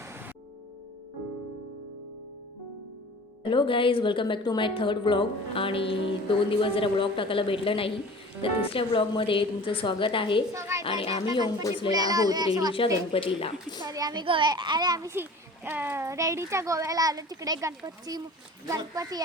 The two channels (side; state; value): both; normal; correlation 0.42